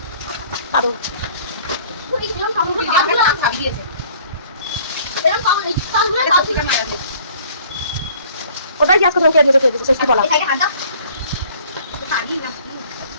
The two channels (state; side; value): inverted; both; correlation -0.54